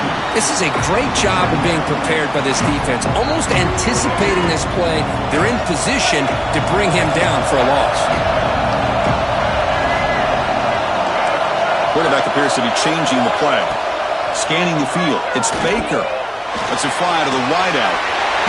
This is a great job of being prepared by this defense. Almost anticipating this play, they're in position to bring him down for a loss. Quarterback appears to be changing the play. Scanning the field. It's Baker. Let's it fly to the wideout.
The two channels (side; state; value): both; identical; correlation 1.00